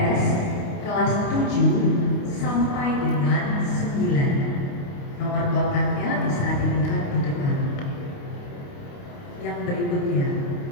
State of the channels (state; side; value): late; right; 29 ms